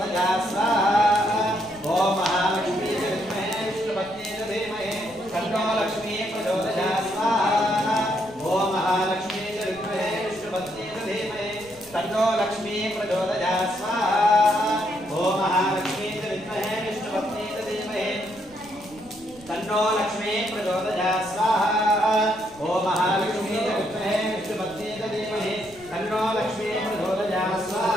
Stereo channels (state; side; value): noise; right; rumble, 24 dB below the sound